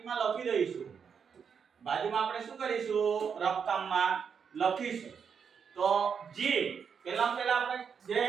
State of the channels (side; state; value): left; quieter; 6.7 dB